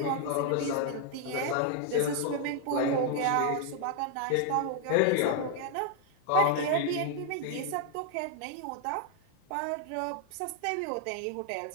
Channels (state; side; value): different; both; correlation 0.00